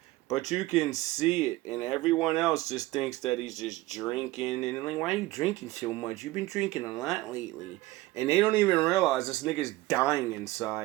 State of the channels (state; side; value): quieter; left; 18.5 dB